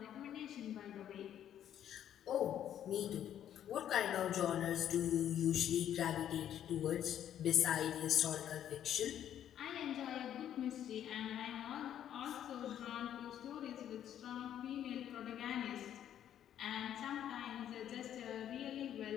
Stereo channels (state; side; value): quieter; right; 10.4 dB